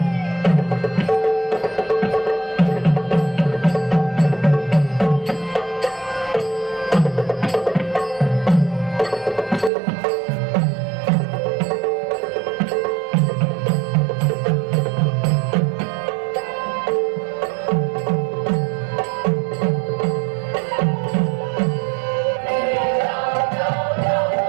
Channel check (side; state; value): left; drops out; at 9.7 s